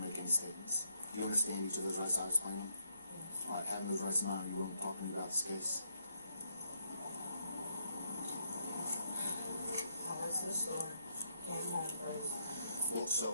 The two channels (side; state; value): both; inverted; correlation -0.74